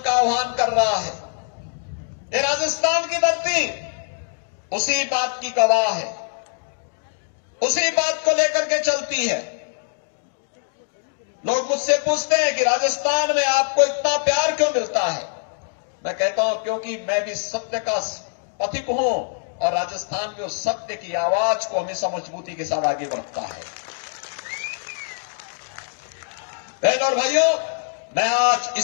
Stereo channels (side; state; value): right; silent; digital silence